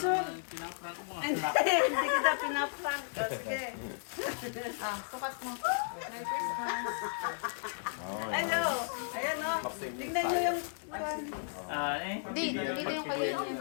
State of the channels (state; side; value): silent; right; digital silence